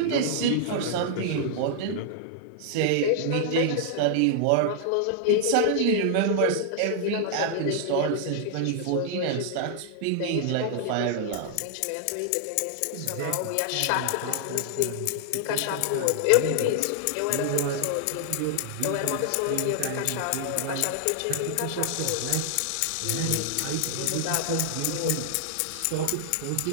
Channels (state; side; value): different; both; correlation -0.01